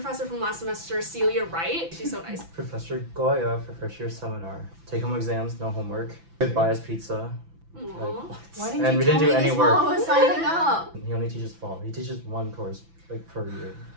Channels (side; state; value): left; late; 6.0 ms